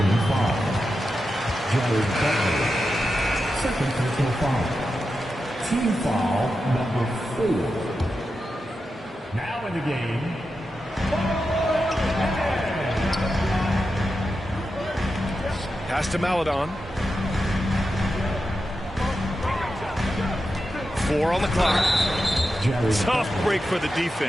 Second personal foul. Team foul number 4. Now in the game. Pass to Maledon. 4 on the clock. Tough break for the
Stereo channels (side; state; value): both; normal; correlation 0.89